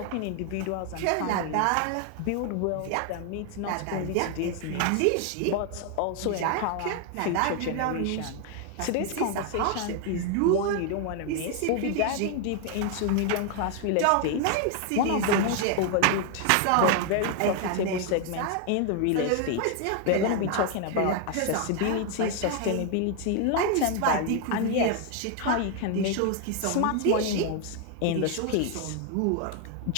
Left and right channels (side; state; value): both; different; correlation 0.00